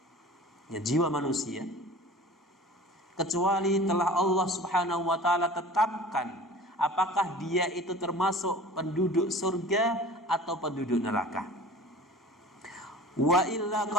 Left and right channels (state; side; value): normal; both; correlation 0.41